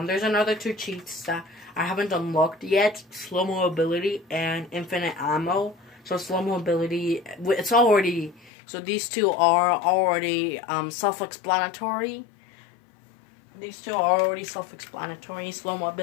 there's another two cheats that I haven't unlocked yet. Slow mobility and infinite ammo. So, slow mobility, it's already, so these two are already self-explanatory. These two are already self-explanatory. Slow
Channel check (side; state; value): right; drops out; at 8.5 s